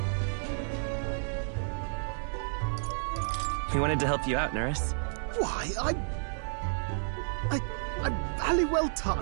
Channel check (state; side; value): silent; left; 57 dB below the other